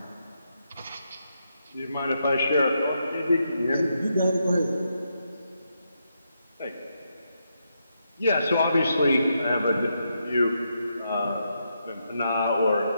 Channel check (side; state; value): both; inverted; correlation -0.82